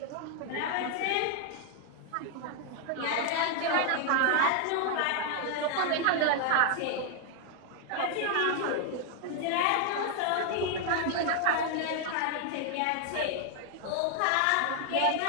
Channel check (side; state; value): both; different; correlation 0.00